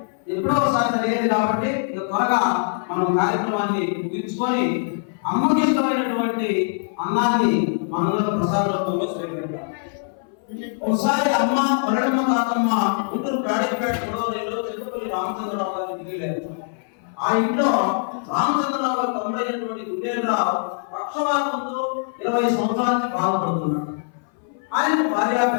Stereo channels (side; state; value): right; silent; 62 dB below the other